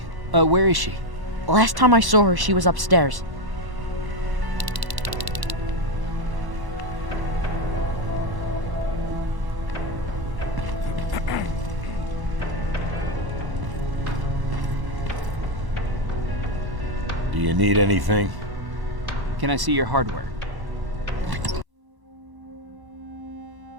Where is she? Last time I saw her, she was upstairs. Do you need anything? Can I see your hardware?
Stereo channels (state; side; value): late; left; 1.1 ms